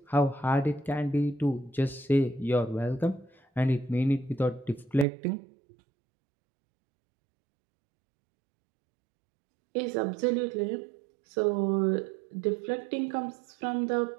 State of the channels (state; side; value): drops out; left; at 5.1 s